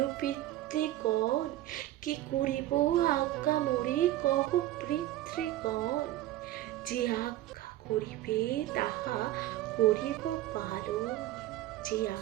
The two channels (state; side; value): quieter; left; 14.8 dB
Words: পিতৃগণ, কি করিব আজ্ঞা মোরে কহ পিতৃগণ। যে আজ্ঞা করিবে তাহা করিব পালন, যে